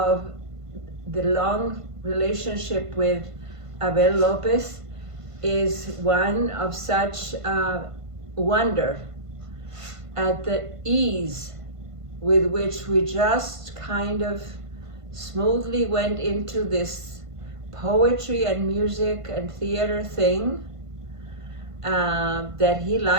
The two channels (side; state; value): left; late; 1.5 ms